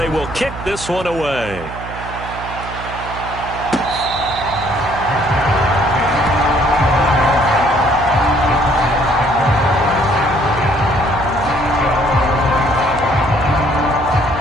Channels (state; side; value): noise; right; hum, 12 dB below the sound